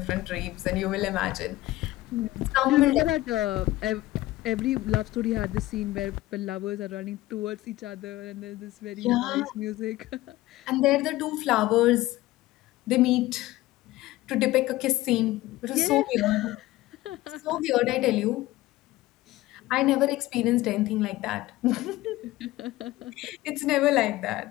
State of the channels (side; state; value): right; quieter; 17.2 dB